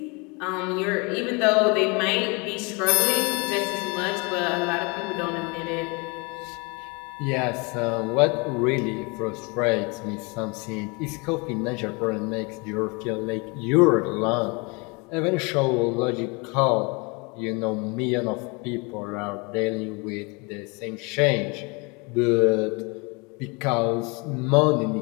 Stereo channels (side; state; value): right; quieter; 29.5 dB